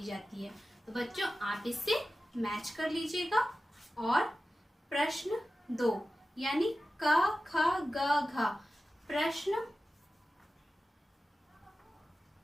जाती है। तो बच्चों आप इससे मैच कर लीजिएगा। और प्रश्न 2 यानी क ख ग घ, प्रश्न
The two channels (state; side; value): normal; both; correlation 0.94